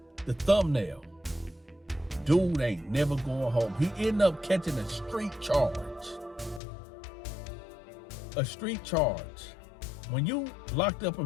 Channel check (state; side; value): drops out; right; at 6.6 s